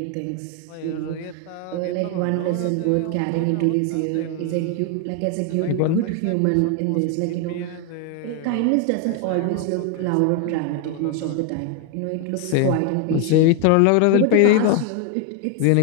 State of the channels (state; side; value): different; both; correlation 0.01